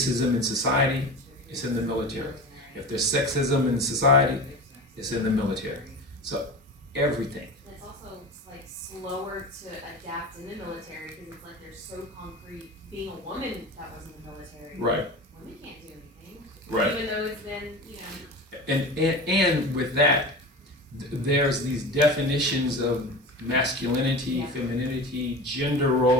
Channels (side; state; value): both; normal; correlation 0.31